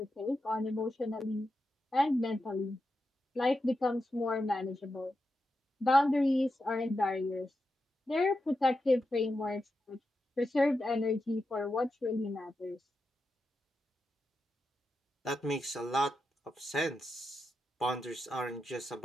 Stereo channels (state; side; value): normal; both; correlation 0.88